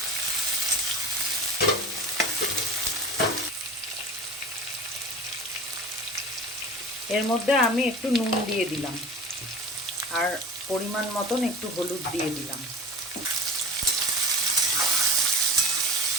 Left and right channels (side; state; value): both; normal; correlation 0.35